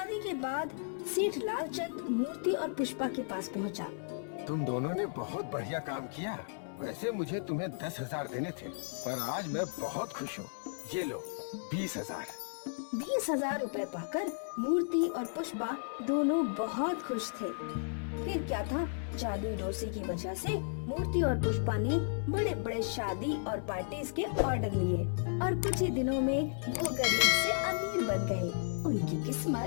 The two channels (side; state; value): right; silent; digital silence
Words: के बाद सेठ लालचंद मूर्ति और पुष्पा के पास पहुंचा। तुम दोनों ने बहुत बढ़िया काम किया। वैसे मुझे तुम्हें 10,000 देने थे, पर आज मैं बहुत खुश हूँ। ये लो 20,000। 20,000 रुपए पाकर मूर्ति और पुष्पा दोनों बहुत खुश थे। फिर क्या था, जादुई डोसे की वजह से मूर्ति और पुष्पा ने बड़े बड़े शादी और पार्टीज के ऑर्डर लिए और कुछ ही दिनों में वो गरीब से अमीर बन गए। उनकी